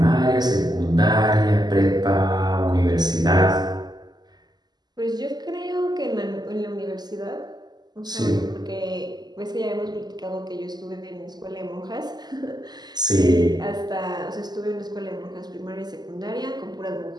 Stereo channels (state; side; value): late; left; 0.20 ms